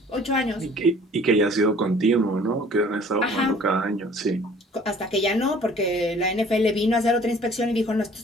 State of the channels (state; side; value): normal; both; correlation 0.52